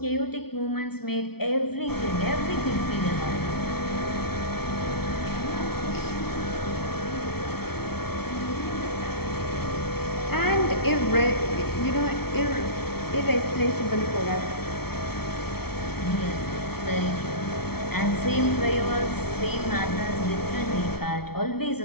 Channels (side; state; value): right; late; 0.95 ms